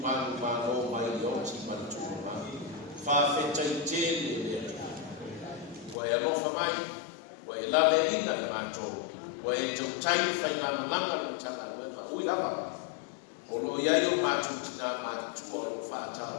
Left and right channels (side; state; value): right; drops out; at 6.0 s